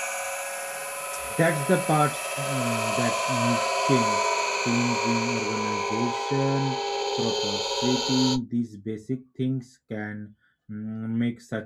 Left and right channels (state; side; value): identical; both; correlation 1.00